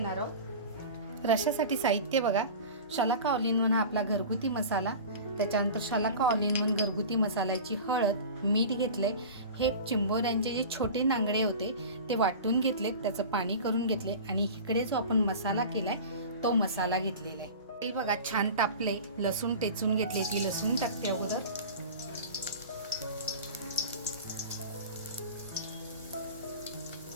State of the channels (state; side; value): inverted; both; correlation -0.34